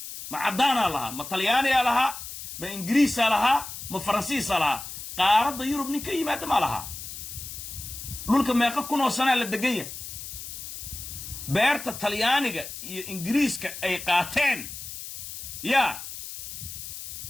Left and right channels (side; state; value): left; noise; hiss, 10 dB below the sound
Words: ma cadaana laha ma talyaaniga laha ma ingiriisa laha ma faransiisa laha qaaradda yurub ninka yimaada ma laha dhulka meeqa kun oo sano la degaya beerta talyaaniga iyo ingiriiska ay qaateen ya